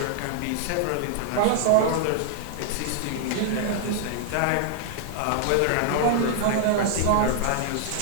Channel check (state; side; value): different; both; correlation 0.00